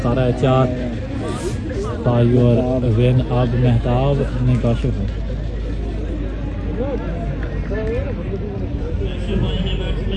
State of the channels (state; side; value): identical; both; correlation 1.00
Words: 4 for your win. अब मेहताब ने काशिफ है